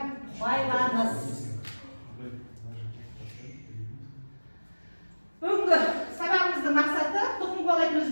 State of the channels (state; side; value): inverted; both; correlation -1.00